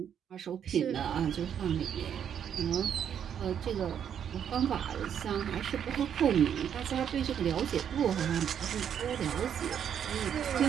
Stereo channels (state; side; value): quieter; left; 8.7 dB